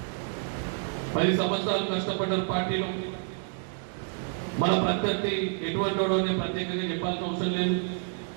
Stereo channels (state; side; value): silent; left; 59 dB below the other